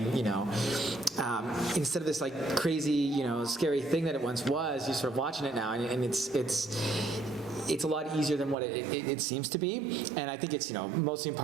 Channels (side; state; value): left; drops out; at 8.6 s